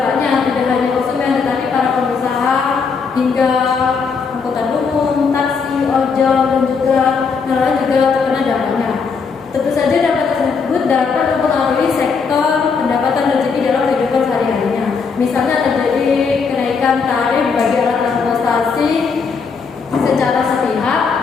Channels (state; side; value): quieter; right; 5.4 dB